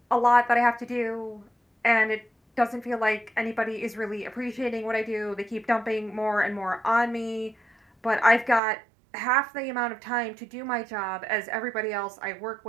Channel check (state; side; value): drops out; left; at 8.6 s